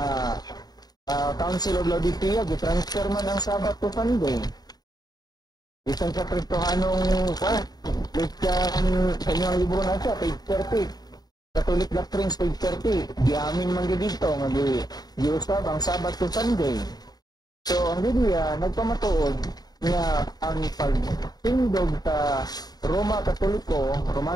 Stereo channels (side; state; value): right; late; 0.19 ms